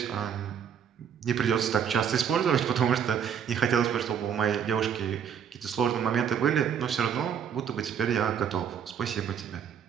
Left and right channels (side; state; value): left; quieter; 8.1 dB